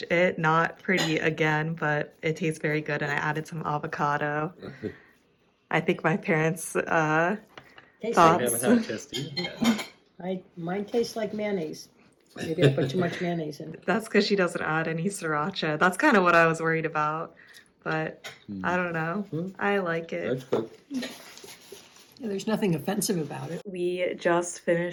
it. Not pretty again, but it tastes very good. And I added some avocado. I think my parents Tastes thought. like, We haven't had a chance to eat it yet. mine tastes like mayonnaise. Maybe I put too much mayonnaise in. That's because she doesn't add any sriracha. That's kind of what I was worried about. But I don't know. I like it. That's good. Yeah, there's nothing offensive about it. We just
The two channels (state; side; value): identical; both; correlation 1.00